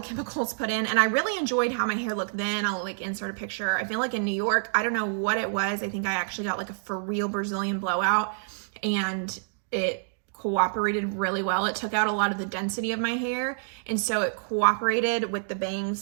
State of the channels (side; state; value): left; silent; digital silence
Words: put in, and I really enjoyed how my hair looked then. I'll like insert a picture. I feel like in New York, I don't know what it was. I think I actually got like a for real Brazilian blowout, and it cooperated really well. It took out a lot of the density of my hair, and so it cooperated with the